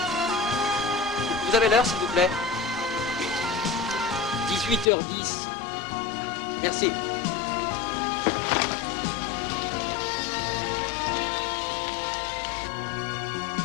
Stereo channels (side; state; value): right; drops out; at 4.9 s